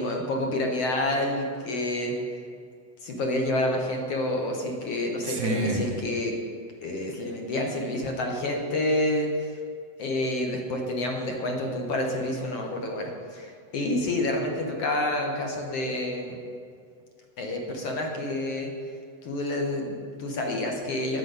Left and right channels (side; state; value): right; late; 8.0 ms